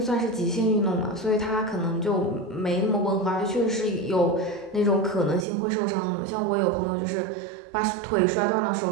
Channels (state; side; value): drops out; left; at 5.5 s